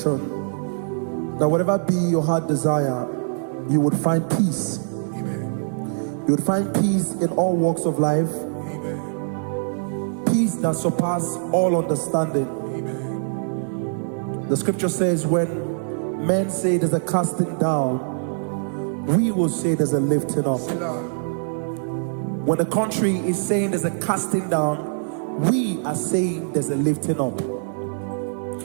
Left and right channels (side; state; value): left; silent; digital silence